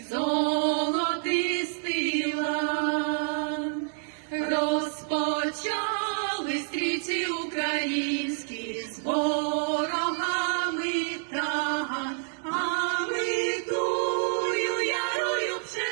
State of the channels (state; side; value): silent; left; digital silence